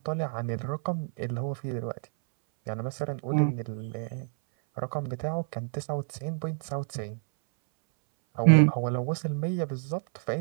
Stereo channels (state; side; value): silent; left; 59 dB below the other